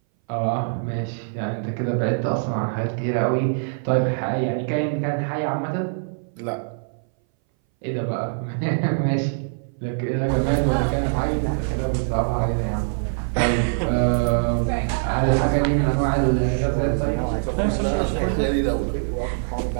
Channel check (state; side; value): silent; left; 60 dB below the other